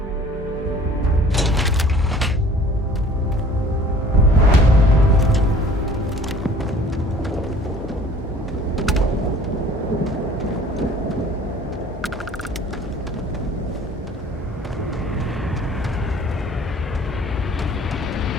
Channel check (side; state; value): both; normal; correlation 0.50